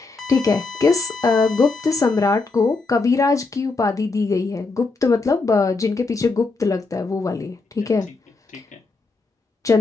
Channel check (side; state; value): right; quieter; 3.8 dB